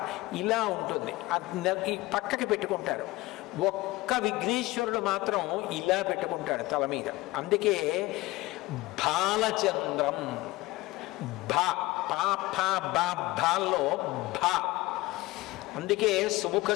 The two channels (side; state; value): right; quieter; 19.9 dB